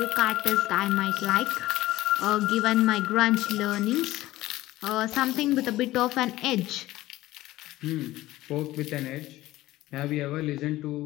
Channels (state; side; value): quieter; right; 16.7 dB